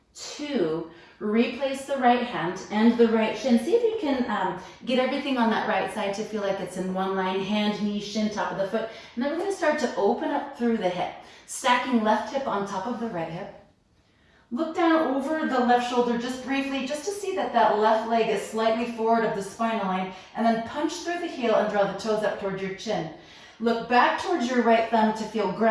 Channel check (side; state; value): both; identical; correlation 1.00